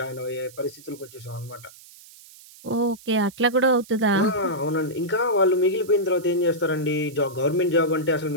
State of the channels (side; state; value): right; noise; hiss, 22 dB below the sound